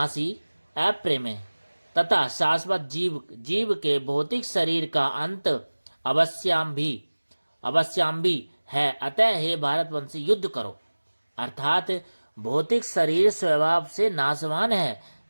अप्रेम तथा शाश्वत जीव के भौतिक शरीर का अंत अवश्याम भी है। अतः हे भारतवंशी, युद्ध करो। अर्थात भौतिक शरीर स्वभाव से नाशवान है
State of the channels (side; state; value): both; inverted; correlation -1.00